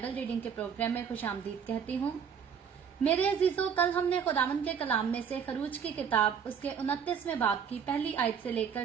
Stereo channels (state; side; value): quieter; left; 7.3 dB